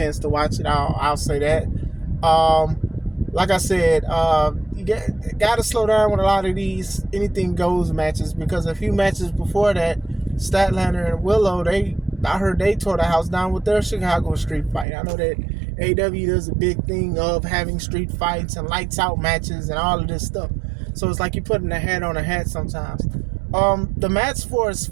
to watch it. I'll say that. Like I said, you got to slow down with a lot of these anything goes matches, because a few matches before that, Statlander and Willow, I heard they tore the house down with their Chicago street fight. I know that AEW does a big thing of having street fights and lights out matches and all of this stuff. So it's like you're putting a hat on a hat sometimes. The match for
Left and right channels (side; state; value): left; drops out; at 14.9 s